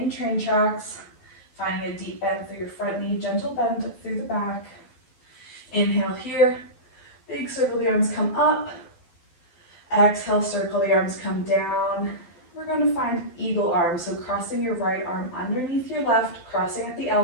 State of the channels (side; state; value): right; late; 12 ms